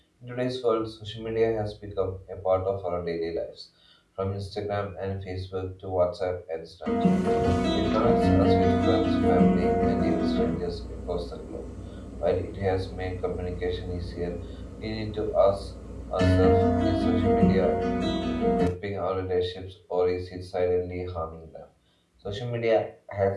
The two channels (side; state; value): both; identical; correlation 1.00